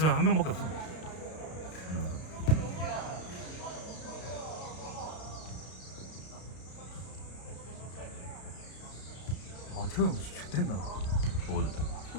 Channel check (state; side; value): late; right; 33 ms